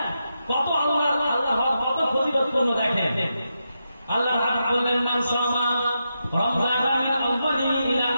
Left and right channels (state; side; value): inverted; both; correlation -0.86